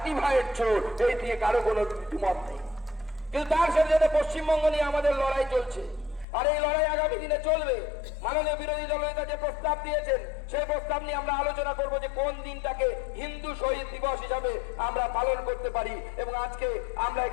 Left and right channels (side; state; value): right; drops out; at 6.2 s